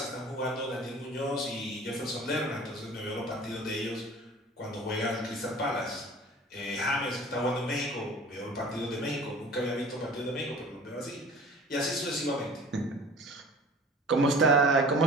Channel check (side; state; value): both; normal; correlation 0.44